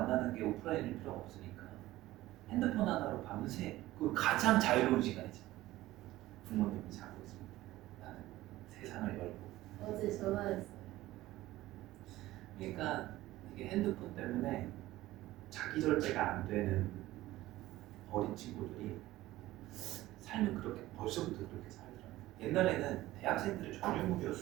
게 오프라인일 필요가 없으니까 핸드폰 하나로 밤새 그 가장 자유로운 시간이지. 부모님이 자고 있습니다. 나는 세상을 열고. 어제 전화했어요. 그러니까 이게 핸드폰 때문에 자기 절제가 안 되는 어린 친구들이 삶을 그렇게 벌써부터 그렇게 살더라고요. 옛날에는 대학생들의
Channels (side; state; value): left; quieter; 16.6 dB